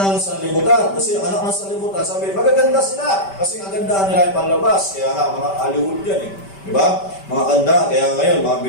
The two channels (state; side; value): late; right; 5.1 ms